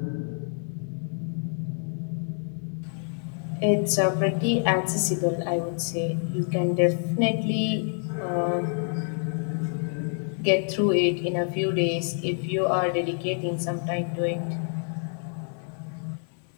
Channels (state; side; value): silent; right; 56 dB below the other